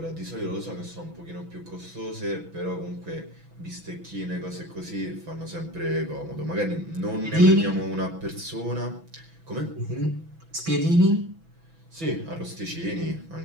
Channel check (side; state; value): left; late; 6.1 ms